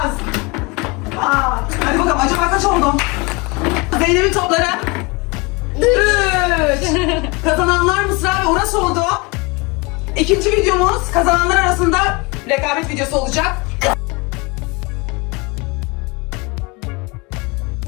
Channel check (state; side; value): quieter; right; 27.3 dB